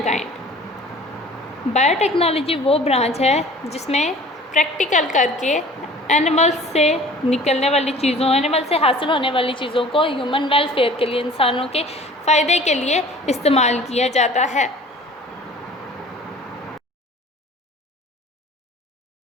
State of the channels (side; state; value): both; normal; correlation 0.47